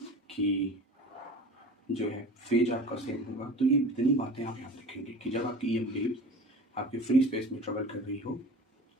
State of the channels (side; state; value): both; normal; correlation 0.38